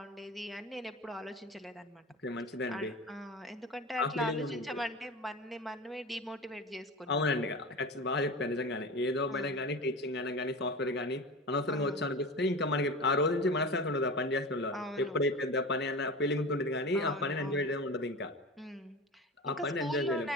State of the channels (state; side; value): normal; both; correlation 0.30